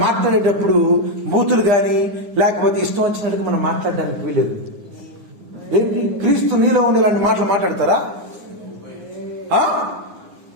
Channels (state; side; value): late; left; 9.6 ms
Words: మాట్లాడేటప్పుడు బూతులు కానీ లేకపోతే ఇష్టం వచ్చినట్టుగా మనం మాట్లాడడానికి వీలేదు. ఏంటి? క్రీస్తు నీలో ఉండే ఇలాంటి మాటలు మాట్లాడతారా?